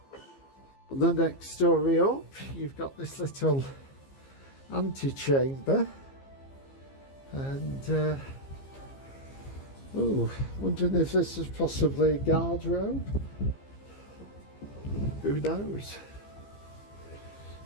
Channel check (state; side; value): late; right; 15 ms